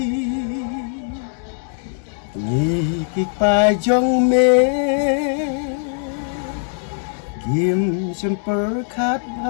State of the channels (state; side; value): silent; right; digital silence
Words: Nikik pajong me Kim semper khat